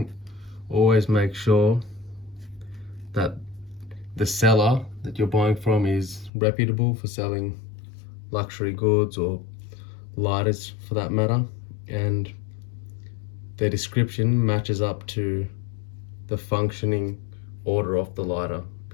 always make sure that the seller that you're buying from is reputable for selling luxury goods or lighters for that matter, and their description matches up to the functioning order of the lighter,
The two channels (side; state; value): right; drops out; at 6.3 s